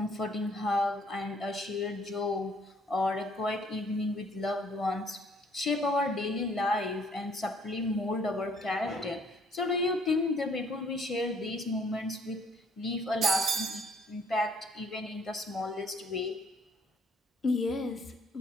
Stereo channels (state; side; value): normal; both; correlation 0.62